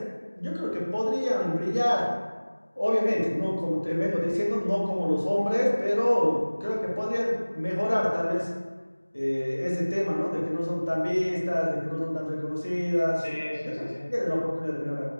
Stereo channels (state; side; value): inverted; both; correlation -1.00